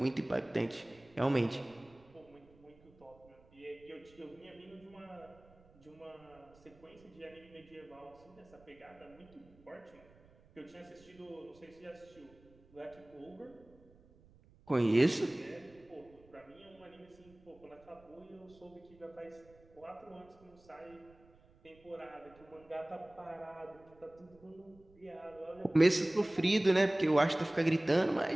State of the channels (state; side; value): noise; right; rumble, 27 dB below the sound